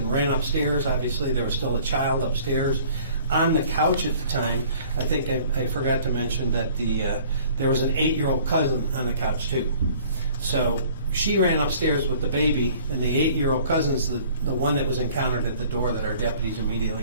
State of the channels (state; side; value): inverted; both; correlation -0.52